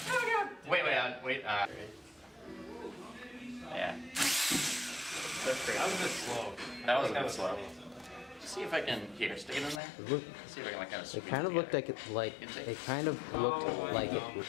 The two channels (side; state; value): right; drops out; at 9.8 s